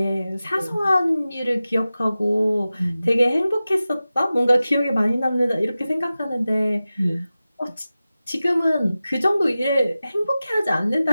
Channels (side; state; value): both; inverted; correlation -0.95